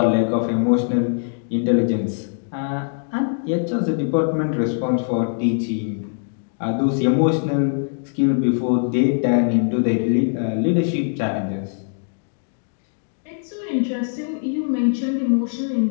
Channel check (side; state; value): right; silent; digital silence